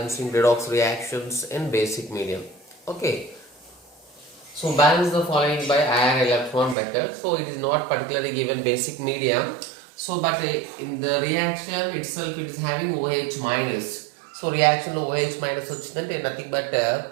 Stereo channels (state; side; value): drops out; left; at 6.8 s